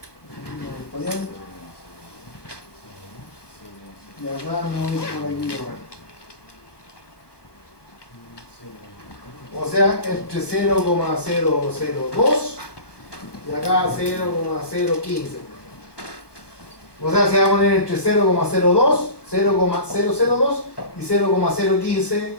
para allá, y acá me voy por aquí. O sea, entre 0,002 y acá 0,015. O sea, se va a poner entre 0,02, 0,002 y 0,015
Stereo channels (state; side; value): late; right; 1.2 ms